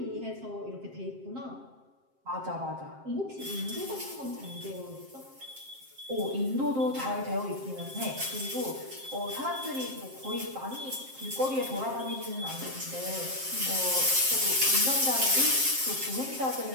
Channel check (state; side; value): late; left; 7.6 ms